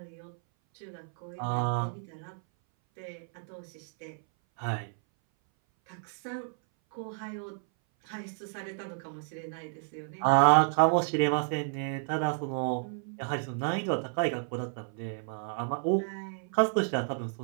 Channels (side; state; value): left; silent; 57 dB below the other